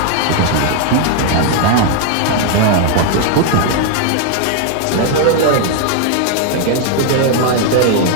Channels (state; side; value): different; both; correlation 0.00